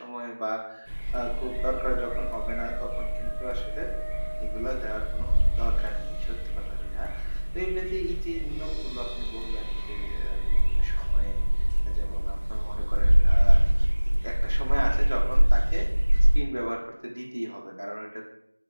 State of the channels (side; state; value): both; inverted; correlation -1.00